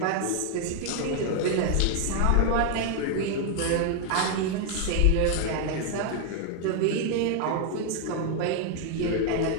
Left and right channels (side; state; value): both; different; correlation 0.00